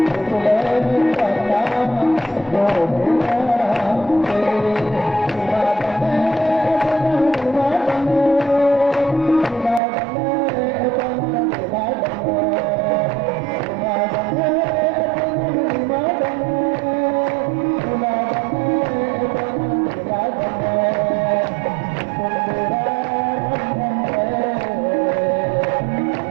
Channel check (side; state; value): left; drops out; at 9.8 s